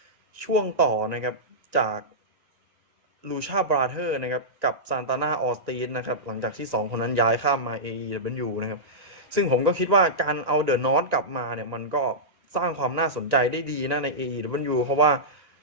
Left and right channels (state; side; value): late; left; 1.9 ms